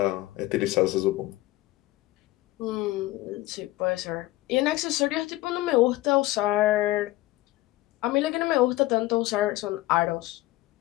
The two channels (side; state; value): right; quieter; 17.6 dB